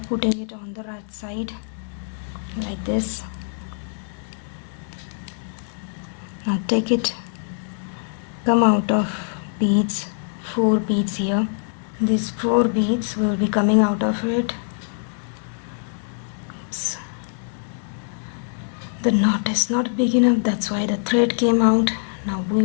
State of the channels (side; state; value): right; silent; digital silence